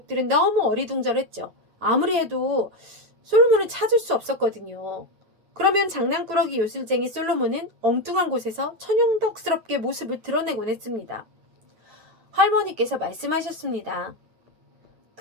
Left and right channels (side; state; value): left; late; 9.1 ms